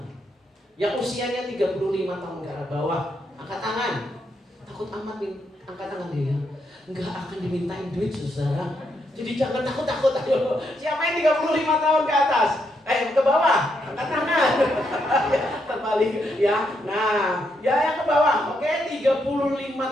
Yang usianya 35 tahun ke bawah, angkat tangan. Takut amat nih, angkat tangan dia. Enggak akan dimintain duit, saudara. Jadi jangan takut-takut. Ayo, siapa yang 35 tahun ke atas? Ke bawah, angkat tangan. Terbalik ya. Nah, ya yang ke bawah. Oke,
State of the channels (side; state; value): both; normal; correlation 0.79